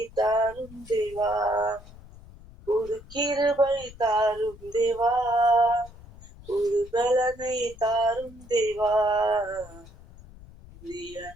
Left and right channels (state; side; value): noise; left; rumble, 20 dB below the sound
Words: தாரும் தேவா, புது கிருபை தாரும் தேவா, புது பலனை தாரும் தேவா. புதிய